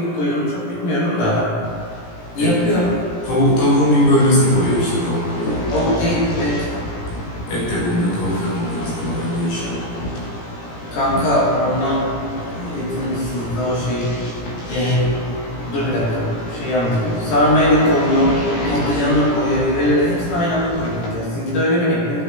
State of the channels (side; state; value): right; late; 17 ms